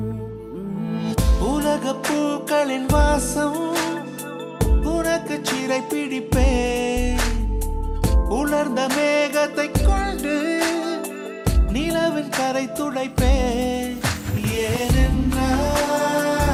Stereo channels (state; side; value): identical; both; correlation 1.00